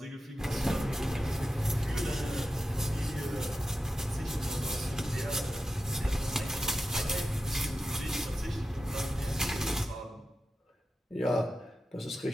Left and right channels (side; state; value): both; normal; correlation 0.91